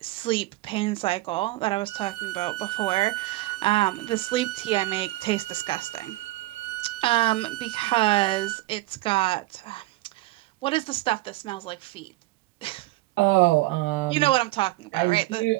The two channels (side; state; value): left; quieter; 19.2 dB